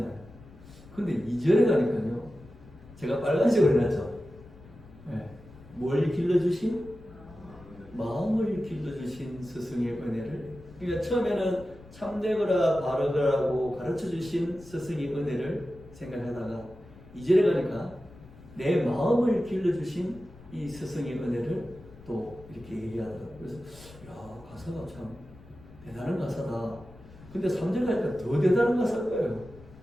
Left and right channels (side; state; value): left; noise; rumble, 21 dB below the sound